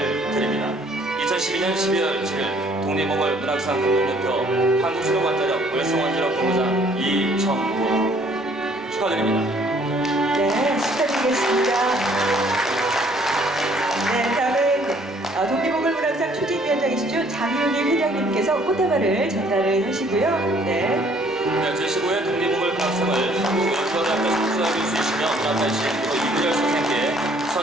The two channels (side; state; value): both; normal; correlation 0.60